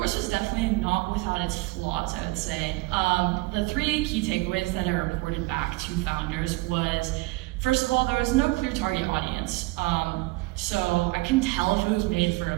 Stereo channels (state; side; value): quieter; left; 22.4 dB